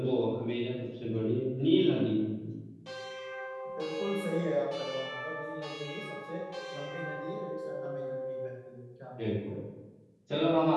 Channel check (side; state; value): both; identical; correlation 1.00